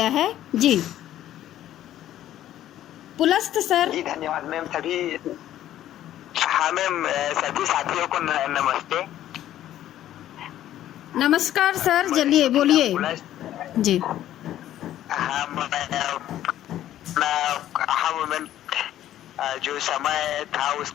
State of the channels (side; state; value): right; quieter; 12.5 dB